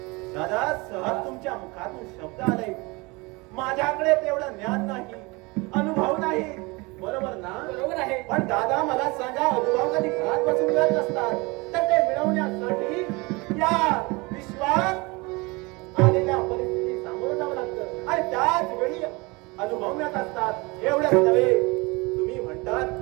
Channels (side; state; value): left; quieter; 25.6 dB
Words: दादा, सहज तुमच्या मुखातून शब्द आले. माझ्याकडे तेवढं ज्ञान नाही, अनुभव नाही. बरोबर ना? बरोबर आहे. पण दादा, मला सांगा, अनुभव कधी घरात बसून मिळत नसतात, तर ते मिळवण्यासाठी या विश्वात आलेल्या परिस्थिती सामोरं जावं लागतं आणि त्याच वेळी अनुभव मिळत असतात. एवढंच नव्हे, तुम्ही